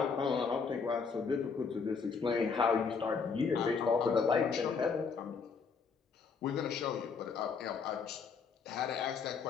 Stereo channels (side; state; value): right; quieter; 5.4 dB